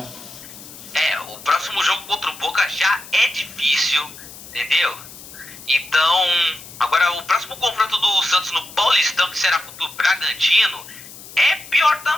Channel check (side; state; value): left; noise; hiss, 16 dB below the sound